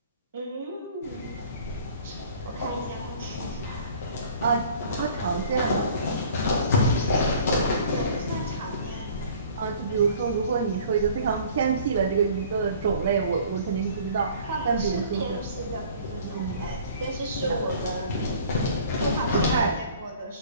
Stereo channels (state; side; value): inverted; both; correlation -0.49